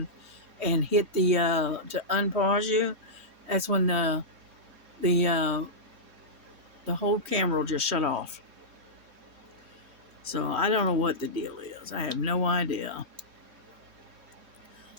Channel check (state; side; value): late; left; 3.1 ms